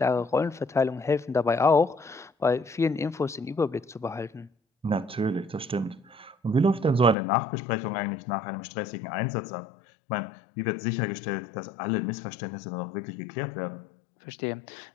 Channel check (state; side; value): drops out; right; at 7.2 s